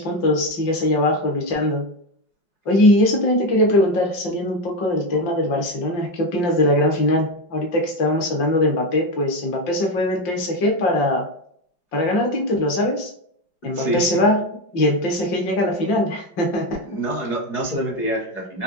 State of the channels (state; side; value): late; right; 5.6 ms